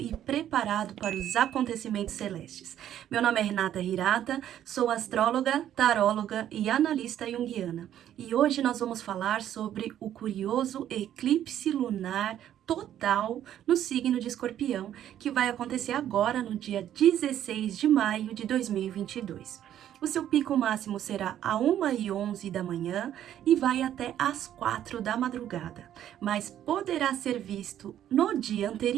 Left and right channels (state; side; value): quieter; left; 11.1 dB